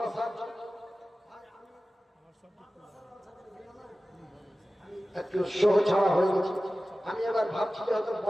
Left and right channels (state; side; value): normal; both; correlation 0.96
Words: জন্য। একটু শো ছাড়া হয়ে গেছে। আমি এবার ভাবছি যে হয়তো